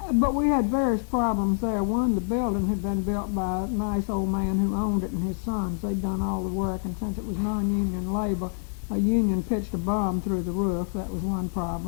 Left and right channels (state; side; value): silent; right; 59 dB below the other